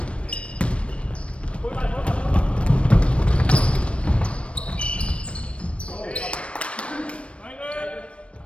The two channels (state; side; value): late; right; 0.061 ms